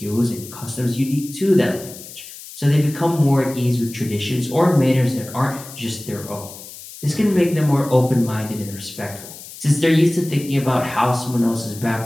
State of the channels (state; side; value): noise; left; hiss, 15 dB below the sound